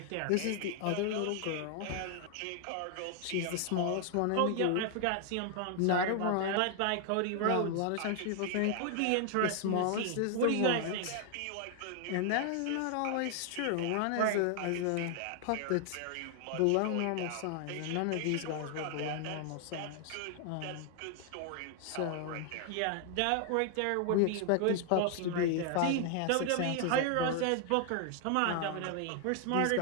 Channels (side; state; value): both; different; correlation 0.00